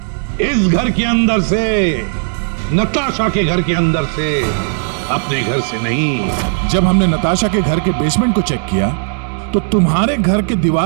इस घर के अंदर से, नताशा के घर के अंदर से, अपने घर से नहीं। जब हमने नताशा के घर के बेसमेंट को चेक किया तो तुम्हारे घर के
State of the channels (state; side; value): silent; left; digital silence